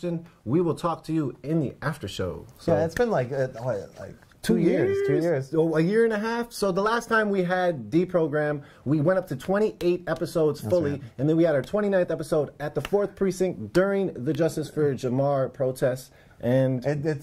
We will talk to you in the after show. So, yeah, it's been like 2 years. 2 years. Oh, a year and a half. So the last time we had Deprogram, we went up to 28 episodes fully, right. And then we had our 29th episode at the 4th Precinct during the Justice for Jamar protests. And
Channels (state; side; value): identical; both; correlation 1.00